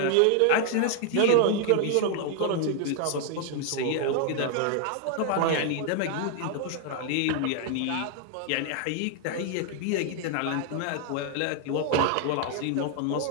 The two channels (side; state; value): both; different; correlation 0.00